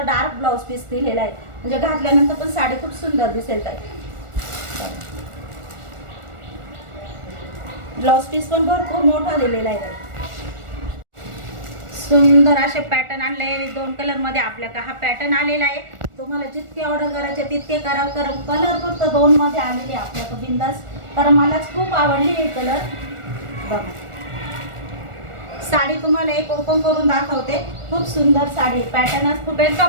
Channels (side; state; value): left; late; 1.4 ms